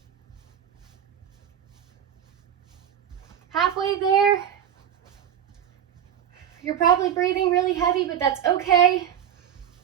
Halfway there. You're probably breathing really heavy, but that's okay.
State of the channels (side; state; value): left; quieter; 9.6 dB